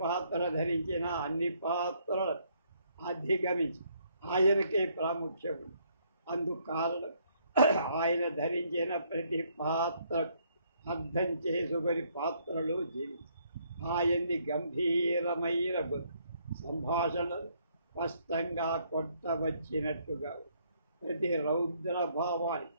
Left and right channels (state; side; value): inverted; both; correlation -0.69